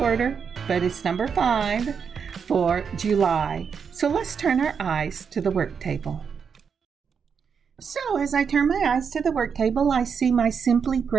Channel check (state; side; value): quieter; left; 6.5 dB